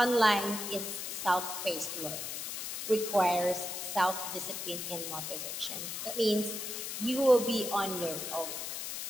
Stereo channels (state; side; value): noise; left; hiss, 5 dB below the sound